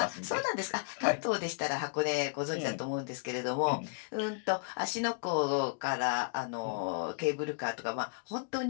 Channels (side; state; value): right; quieter; 36.8 dB